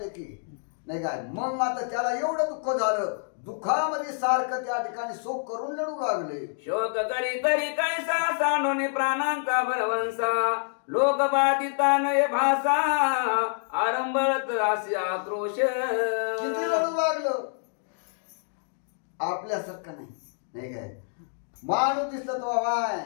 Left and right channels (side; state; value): right; silent; digital silence